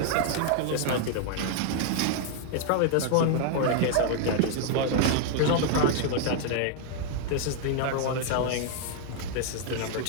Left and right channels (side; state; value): both; different; correlation 0.00